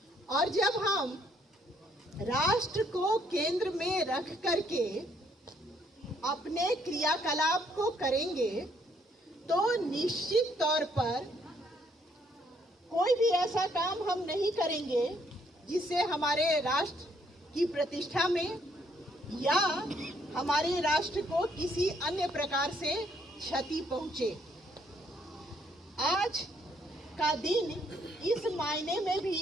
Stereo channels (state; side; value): normal; both; correlation 0.69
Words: और जब हम राष्ट्र को केंद्र में रख करके अपने क्रियाकलाप को करेंगे तो निश्चित तौर पर कोई भी ऐसा काम हम नहीं करेंगे जिससे हमारे राष्ट्र की प्रतिष्ठा में या हमारे राष्ट्र को किसी अन्य प्रकार से क्षति पहुंचे। आज का दिन इस मायने में भी